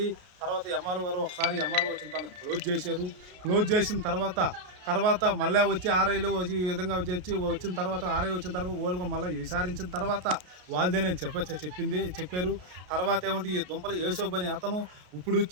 తర్వాత ఎంఆర్ఓ గారు ఒకసారి ఎంఆర్ఓ వచ్చిన తను క్లోజ్ చేశారు. క్లోజ్ చేసిన తర్వాత మళ్ళీ వచ్చి ఆర్ఐలు ఈ విధంగా వచ్చిన తర్వాత ఆర్ఐ వచ్చిన తర్వాత వాళ్ళు మళ్ళీ విచారించిన తర్వాత వాళ్ళదేనని చెప్పారు. తర్వాత ఏమంటే ఈ దుంపలు యేసోబని అతను ఇప్పుడు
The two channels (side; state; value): left; late; 33 ms